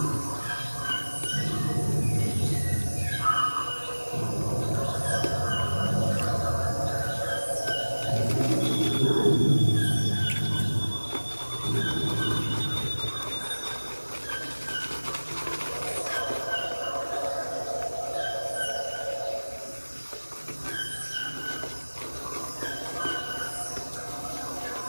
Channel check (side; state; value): both; inverted; correlation -1.00